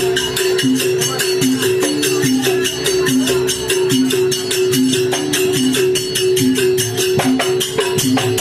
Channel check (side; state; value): both; identical; correlation 1.00